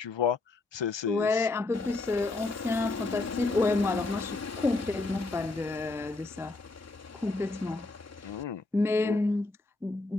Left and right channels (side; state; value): right; quieter; 3.3 dB